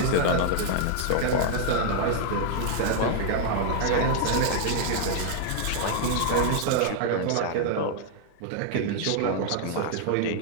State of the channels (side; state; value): both; different; correlation 0.00